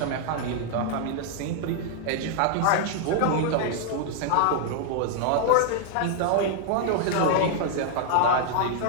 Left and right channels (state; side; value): different; both; correlation 0.00